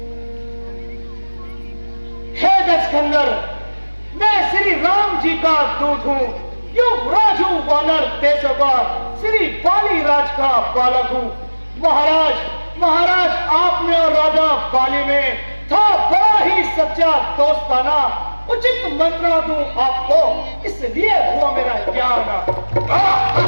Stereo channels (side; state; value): both; inverted; correlation -1.00